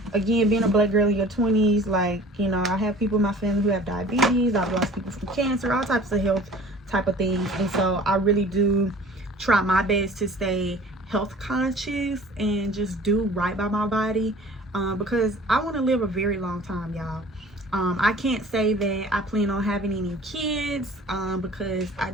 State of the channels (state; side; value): normal; both; correlation 0.46